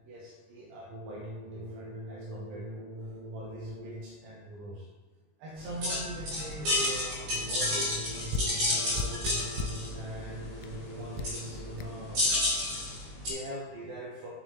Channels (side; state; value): left; late; 19 ms